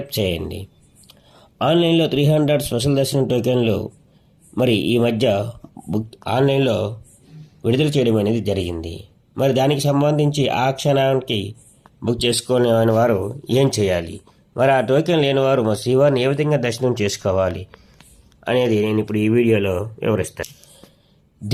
చేయండి. ఆన్లైన్లో 300 స్పెషల్ దర్శనం టోకెన్లు మరి ఈ మధ్య ఆన్లైన్లో విడుదల చేయడం అనేది జరిగింది. మరి దానికి సంబంధించి ఆ క్షణానికి బుక్ చేసుకునే వారు ఏం చేయాలి, మరి ఆ టోకెన్ లేని వారు మరి శ్రీవారిని ఏ విధంగా దర్శనం చేసుకోవాలి అనేది నేను ఇప్పుడు ఈ వీడియోలో వివరిస్తాను.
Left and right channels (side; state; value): both; identical; correlation 1.00